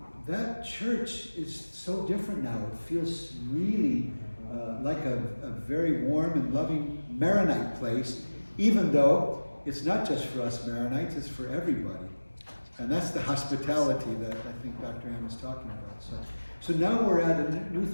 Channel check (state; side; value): inverted; both; correlation -1.00